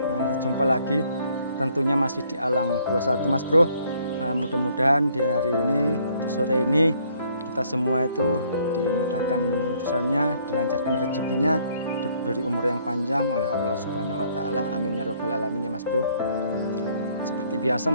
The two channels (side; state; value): both; inverted; correlation -0.65